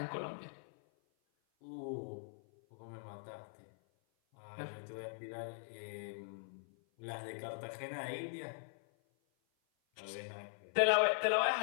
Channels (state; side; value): silent; right; 50 dB below the other